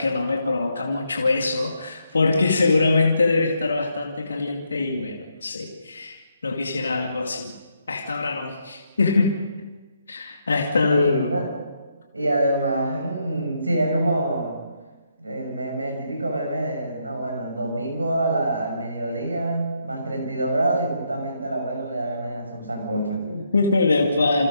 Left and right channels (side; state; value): both; inverted; correlation -0.77